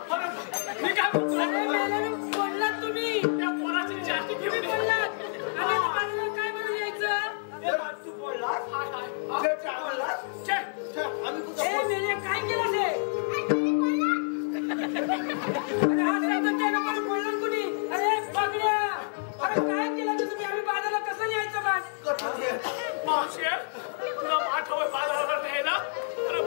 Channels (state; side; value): silent; right; digital silence